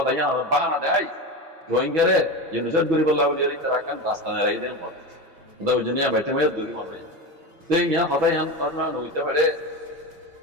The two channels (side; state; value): left; late; 6.1 ms